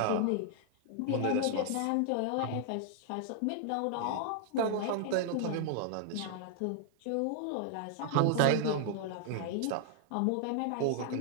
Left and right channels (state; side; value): different; both; correlation 0.00